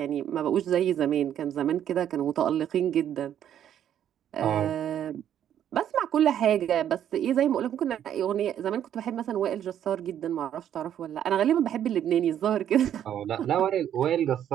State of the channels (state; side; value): quieter; left; 10.2 dB